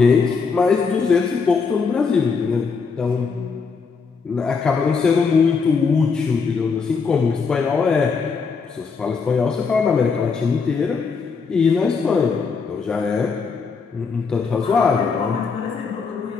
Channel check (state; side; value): quieter; right; 5.2 dB